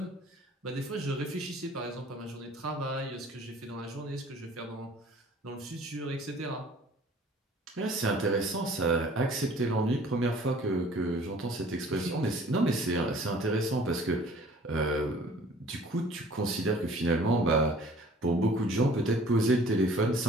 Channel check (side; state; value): both; normal; correlation 0.51